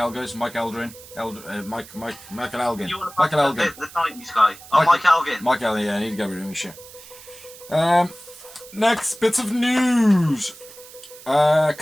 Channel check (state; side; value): noise; right; hiss, 19 dB below the sound